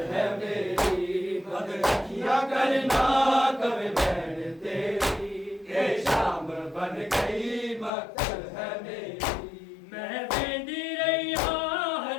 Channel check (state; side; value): drops out; right; at 7.9 s